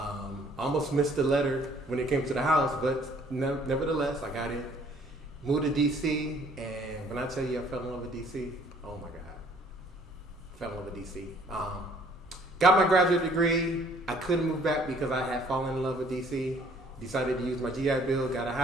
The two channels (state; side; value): normal; both; correlation 0.59